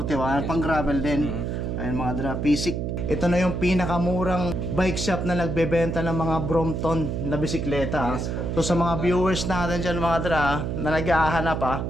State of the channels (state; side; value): noise; right; hum, 2 dB below the sound